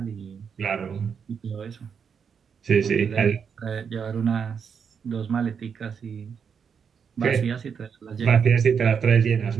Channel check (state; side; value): quieter; left; 6.8 dB